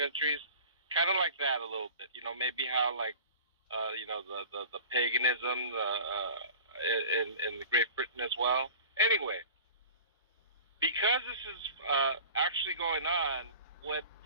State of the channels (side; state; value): both; inverted; correlation -0.40